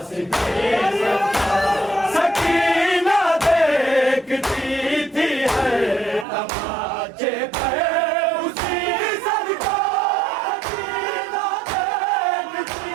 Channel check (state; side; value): drops out; left; at 6.2 s